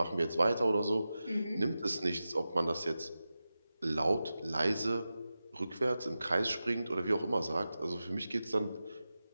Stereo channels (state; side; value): inverted; both; correlation -0.93